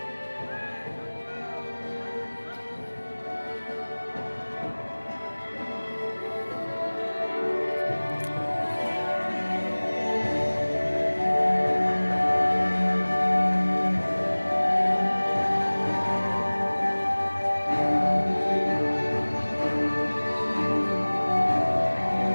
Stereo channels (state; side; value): inverted; both; correlation -1.00